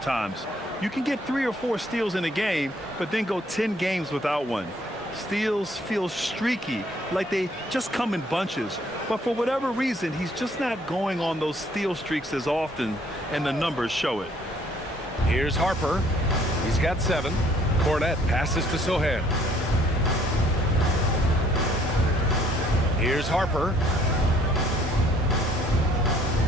You can get 3 or 4 steals in a game, but then go 10 games without one. Steals feel streaky, like they just come in bunches. But for whatever reason, he's just not going on those steal streaks as often, and the numbers show it. Here's Harper. He's got 7. Cornette passes to Sohan. Here's Harper.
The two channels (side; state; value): both; normal; correlation 0.62